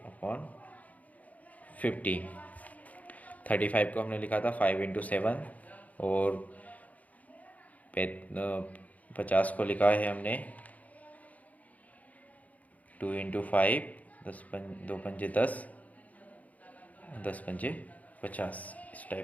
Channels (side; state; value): right; late; 0.074 ms